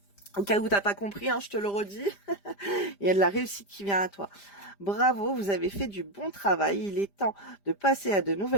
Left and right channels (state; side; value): late; right; 5.0 ms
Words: Au cas où t'as pas compris, hein, je te le redis, il y a de la réussite qui vient à toi. Bravo, vous avez fait du bon travail. Il est temps de passer à de